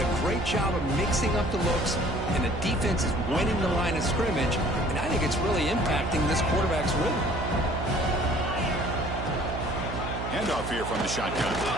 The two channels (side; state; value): right; noise; hum, 6 dB below the sound